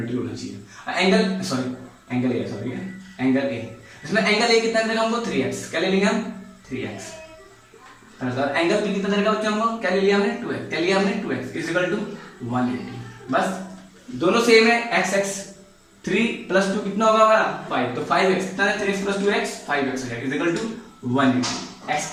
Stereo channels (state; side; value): identical; both; correlation 1.00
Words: होना चाहिए। Angle sorry angle A, sorry angle A, इसमें एंगल ए कितना देगा हमको, 3x। क्या ले लेंगे हम, 3x। एंगल बी कितना देगा बच्चों हमको, क्या ले लिया हमने, 2x। क्या लिया हमने, 2x इज इक्वल टू 180। बस दोनों सेम है, x x 3 + 2 कितना होगा हमारा 5। तो 5x कितना है, 3x + 2x 5x है इज इक्वल टू 180। x